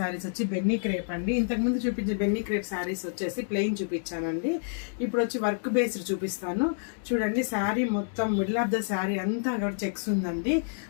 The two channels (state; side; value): silent; right; digital silence